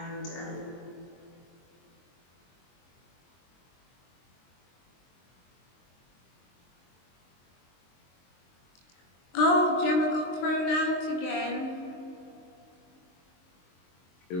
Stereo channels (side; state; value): right; late; 23 ms